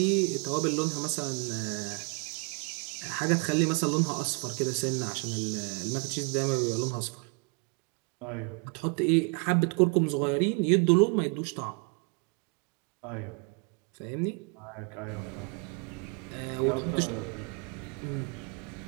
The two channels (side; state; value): left; quieter; 35.2 dB